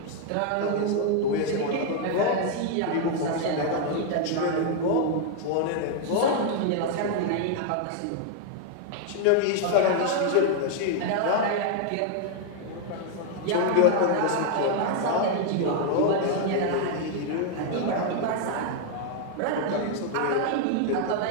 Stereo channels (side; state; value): both; different; correlation 0.00